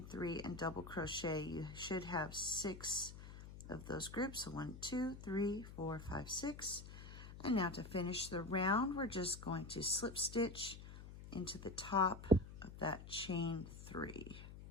3 and double crochet, you should have 6 of those groups. So 1, 2, 3, 4, 5, 6. And now to finish the round, we're just going to slip stitch into the top of that chain 3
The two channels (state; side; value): noise; left; hum, 13 dB below the sound